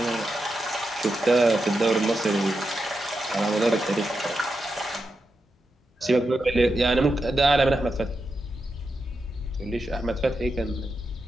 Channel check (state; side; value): normal; both; correlation 0.87